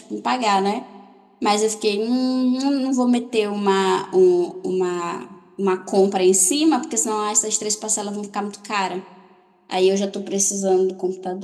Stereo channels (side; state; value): both; identical; correlation 1.00